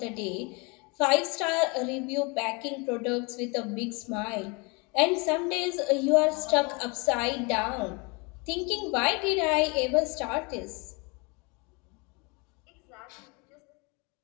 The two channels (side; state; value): right; quieter; 29.9 dB